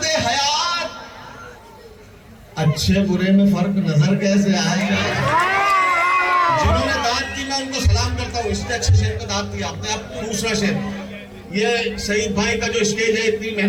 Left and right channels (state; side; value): identical; both; correlation 1.00